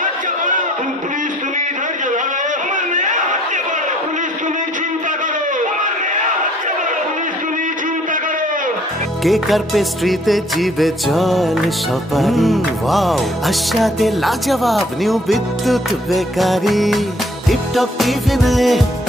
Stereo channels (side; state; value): both; normal; correlation 0.60